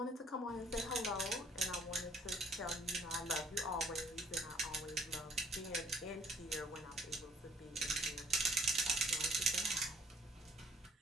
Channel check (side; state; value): both; normal; correlation 0.59